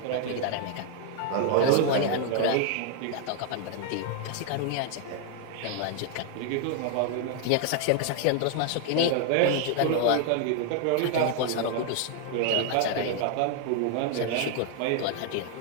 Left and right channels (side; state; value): both; different; correlation 0.00